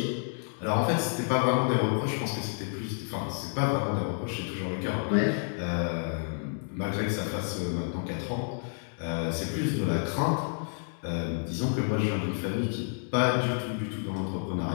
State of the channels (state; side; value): silent; right; 58 dB below the other